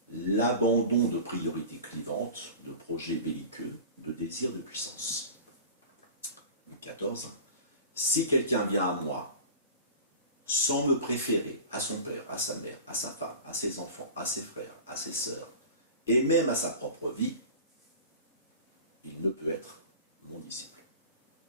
L'abandon de priorités clivantes, de projets belliqueux, de désirs de puissance. Luc 14. Si quelqu'un vient à moi, sans me préférer à son père, à sa mère, à sa femme, à ses enfants, à ses frères, à ses sœurs, et même à sa propre vie, il ne peut être mon disciple.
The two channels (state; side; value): inverted; both; correlation -0.36